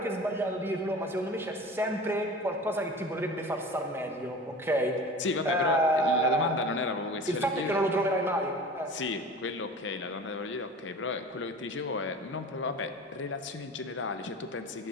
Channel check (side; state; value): both; normal; correlation 0.38